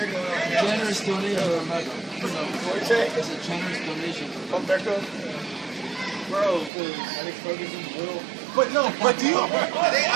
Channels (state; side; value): drops out; left; at 6.7 s